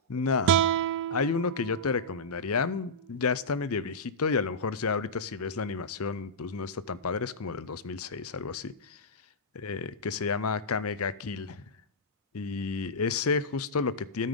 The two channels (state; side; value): normal; both; correlation -0.12